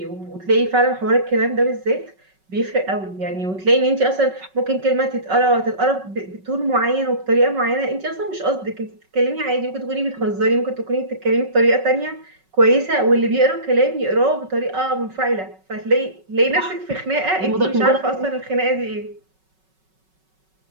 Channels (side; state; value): left; late; 5.3 ms